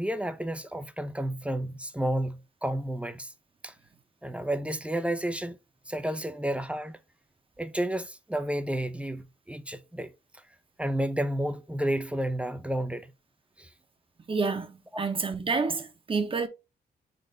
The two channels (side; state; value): both; normal; correlation 0.79